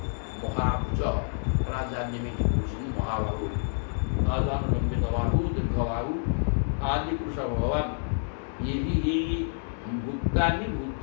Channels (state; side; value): silent; right; digital silence